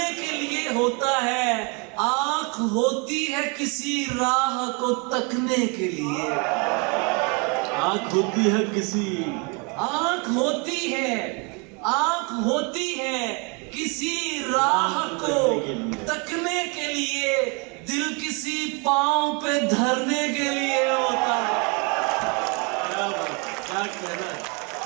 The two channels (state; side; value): quieter; left; 32.4 dB